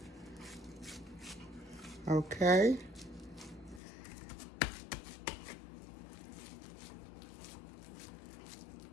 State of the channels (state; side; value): drops out; right; at 3.8 s